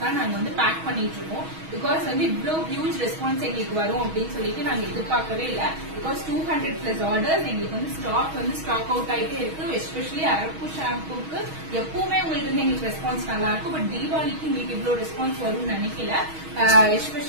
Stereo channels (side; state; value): left; late; 6.3 ms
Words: தான் நாங்க வந்து பேக் பண்ணிட்டு இருக்கோம். பிகாஸ் வந்து இவ்வளவு ஹியூஜ் ரெஸ்பான்ஸ் எங்களுக்கு வரும் அப்படின்னு சொல்லிட்டு நாங்க எதிர்பார்க்கவே இல்லை. பிகாஸ் 200+ ஆர்டர்ஸ் எங்களுக்கு வந்து ஸ்டாக் அவுட் ஆயிட்டே இருக்கு. எஸ்பெஷலி அரப்பு ஷாம்புக்கு எப்பவுமே உங்களுக்கு வந்து எங்களுக்கு ரெஸ்பான்ஸ் நல்லா இருக்கும். பட் தீபாவளிக்கு உங்களுக்கு இவ்வளவு ரெஸ்பான்ஸ் வரும்னு நினைக்கல.